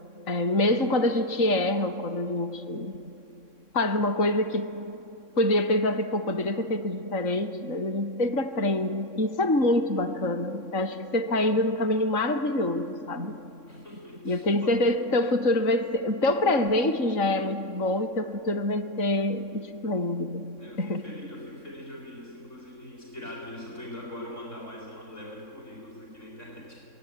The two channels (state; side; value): late; right; 3.6 ms